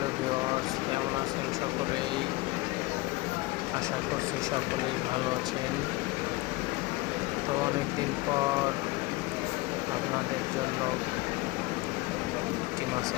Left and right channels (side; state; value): right; quieter; 21.5 dB